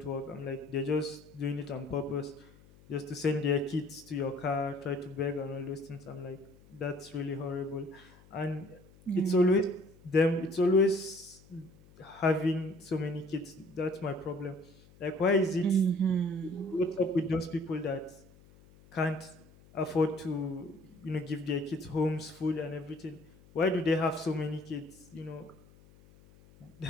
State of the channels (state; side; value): noise; left; hum, 25 dB below the sound